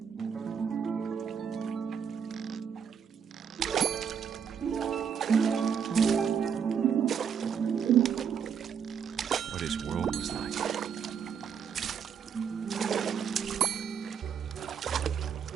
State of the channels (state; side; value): quieter; left; 7.3 dB